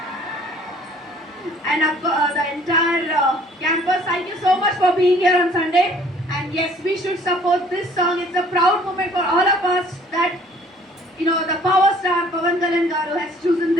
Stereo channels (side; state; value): both; normal; correlation 0.56